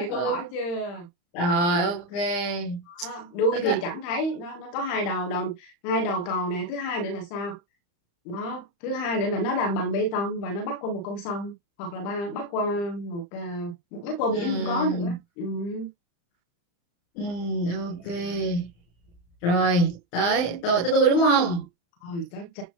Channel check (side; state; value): right; late; 35 ms